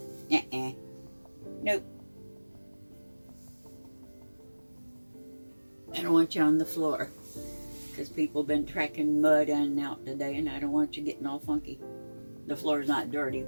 Nope. I don't want you on the floor. Because people have been tracking mud in and out today, and I don't want you getting all funky. The floor's not dirty,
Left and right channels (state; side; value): inverted; both; correlation -1.00